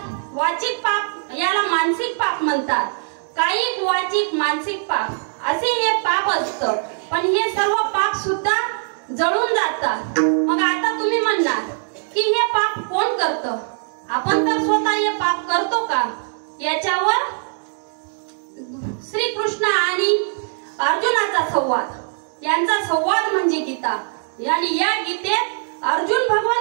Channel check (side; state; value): left; silent; 65 dB below the other